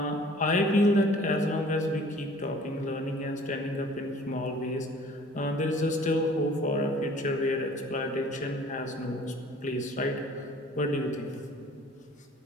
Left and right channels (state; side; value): normal; both; correlation 0.51